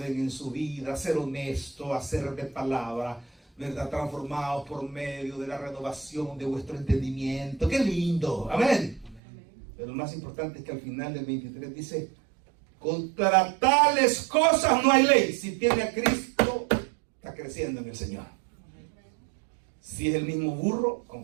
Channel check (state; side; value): drops out; left; at 9.2 s